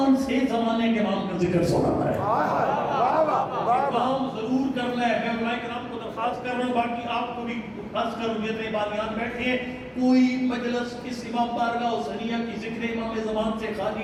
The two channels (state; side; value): identical; both; correlation 1.00